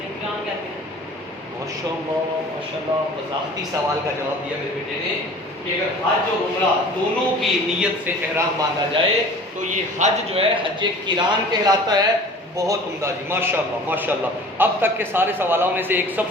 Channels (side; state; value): both; normal; correlation 0.44